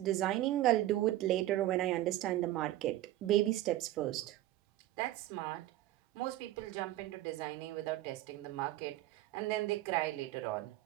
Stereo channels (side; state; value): left; quieter; 15.1 dB